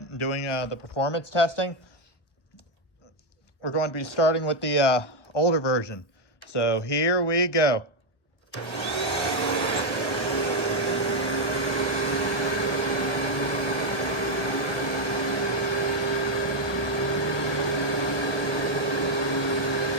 and doing the performance testing. We're going to be starting with the older version. So here we go.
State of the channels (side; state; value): right; late; 1.4 ms